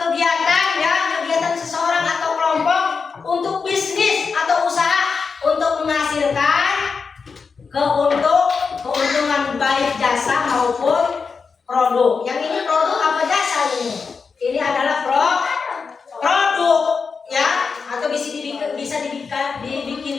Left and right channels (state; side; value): quieter; right; 5.2 dB